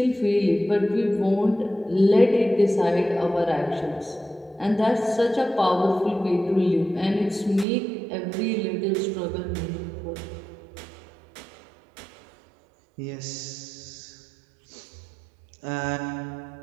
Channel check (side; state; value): left; drops out; at 7.7 s